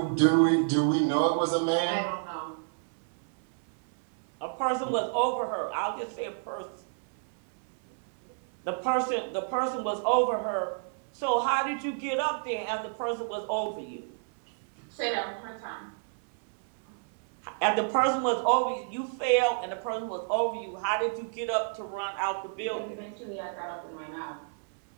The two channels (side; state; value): left; silent; 58 dB below the other